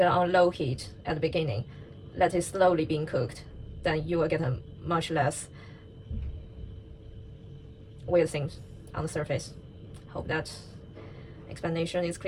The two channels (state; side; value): identical; both; correlation 1.00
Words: on low heat at the beginning, let it slowly being cooked, then you will get a much less weird things on the surface. Hope that explanation is